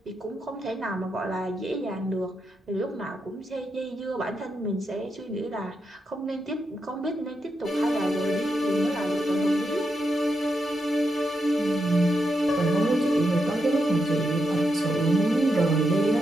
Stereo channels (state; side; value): normal; both; correlation 0.84